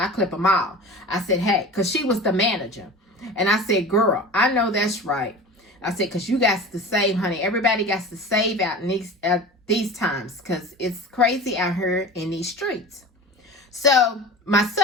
clip them all. I said, hey, because she was the manager. And I said, girl, I know that's right. I said, because you got to save, honey. Everybody got to save out in these times, because it's crazy out here in these streets. So my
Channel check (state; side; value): normal; both; correlation 0.35